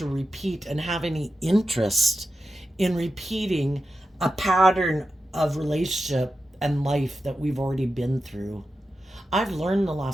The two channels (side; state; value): both; normal; correlation 0.90